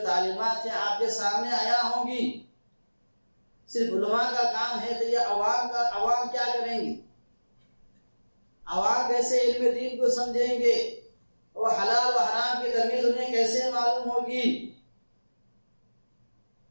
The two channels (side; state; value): both; inverted; correlation -1.00